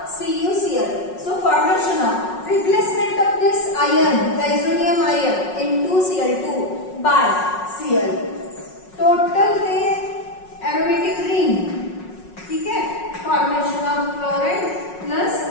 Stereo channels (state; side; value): late; right; 5.5 ms